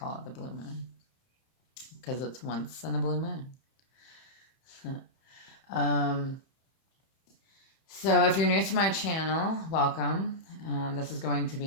it the blue moon, because it's once in a blue moon. So if you're new to my channel, welcome. This is going to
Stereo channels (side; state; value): right; late; 31 ms